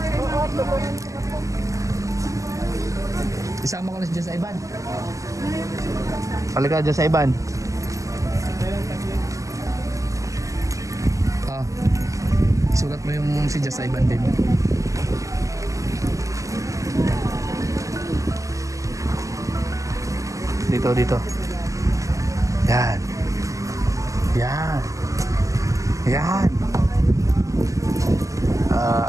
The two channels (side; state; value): left; late; 0.16 ms